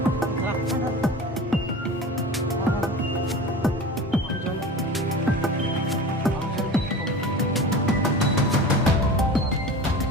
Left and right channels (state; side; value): normal; both; correlation 0.35